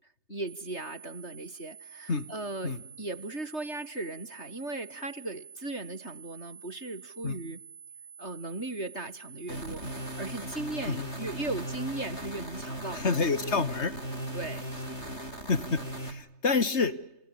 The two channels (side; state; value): right; late; 3.3 ms